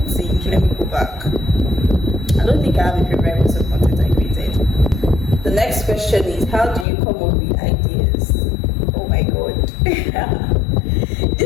think, let me go back. I don't think I have a favorite piece of content I created. The next question is, how do you come up with ideas? Oh my god.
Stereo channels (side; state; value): right; drops out; at 6.9 s